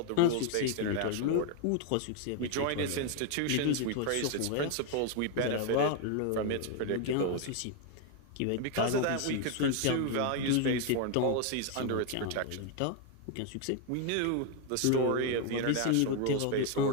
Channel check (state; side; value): different; both; correlation 0.01